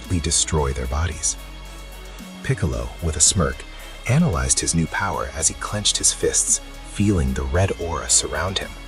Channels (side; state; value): both; identical; correlation 1.00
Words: destroy their bodies. Piccolo, with a smirk, analyzed his new power as he clenched his fists, feeling the red aura surround him.